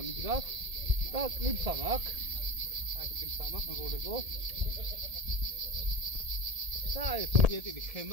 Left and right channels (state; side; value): late; left; 1.7 ms